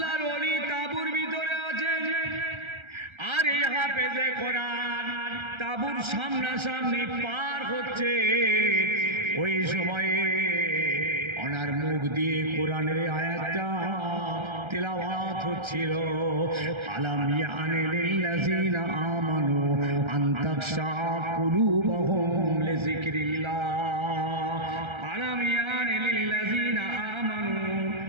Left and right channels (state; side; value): late; left; 1.3 ms